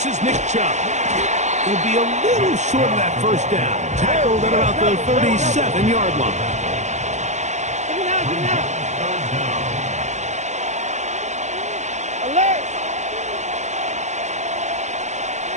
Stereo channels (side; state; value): left; late; 0.34 ms